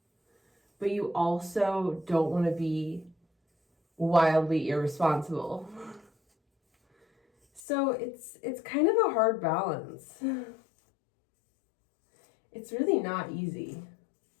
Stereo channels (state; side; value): drops out; right; at 7.6 s